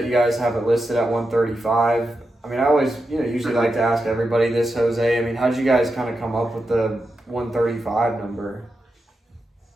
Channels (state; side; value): normal; both; correlation 0.88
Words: you guys have it listed at 135. I mean, I always, usually like to ask everybody this, Jose. I mean, how'd you guys kind of come up with the 135 number?